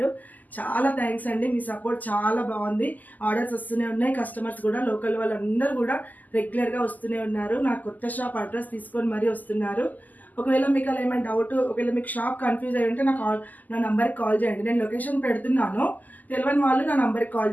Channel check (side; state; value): right; late; 0.082 ms